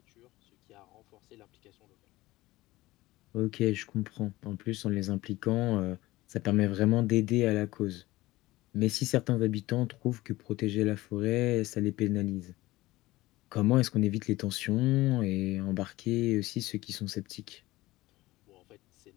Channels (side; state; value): right; quieter; 18.6 dB